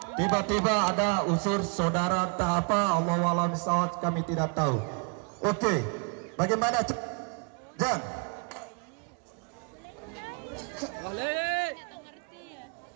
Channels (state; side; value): quieter; left; 36.8 dB